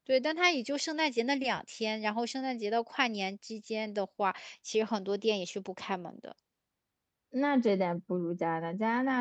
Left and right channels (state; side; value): identical; both; correlation 1.00